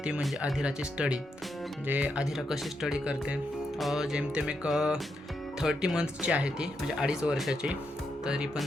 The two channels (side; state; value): both; normal; correlation 0.82